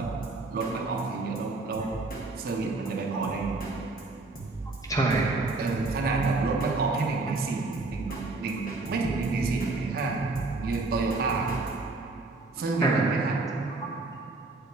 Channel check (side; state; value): left; quieter; 3.3 dB